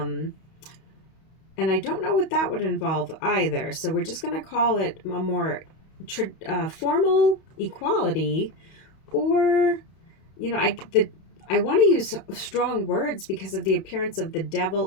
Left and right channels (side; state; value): right; late; 31 ms